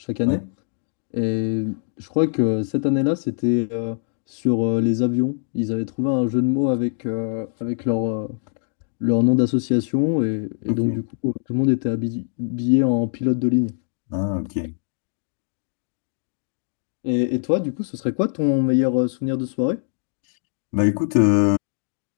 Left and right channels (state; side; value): silent; right; digital silence